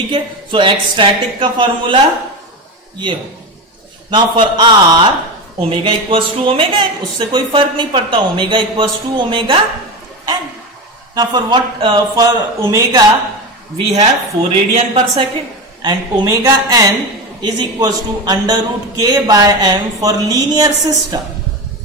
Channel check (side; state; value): both; normal; correlation 0.20